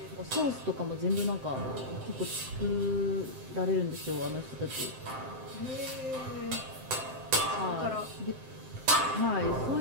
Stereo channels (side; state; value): left; late; 7.7 ms